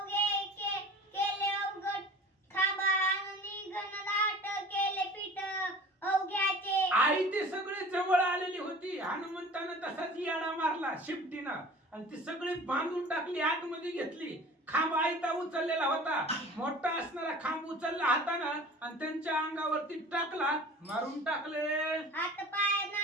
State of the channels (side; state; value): both; normal; correlation 0.42